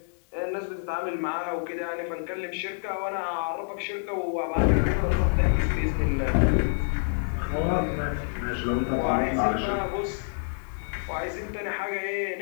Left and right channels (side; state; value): right; silent; digital silence